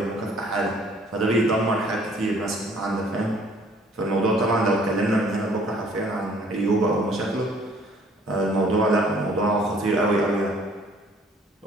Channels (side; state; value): both; normal; correlation 0.58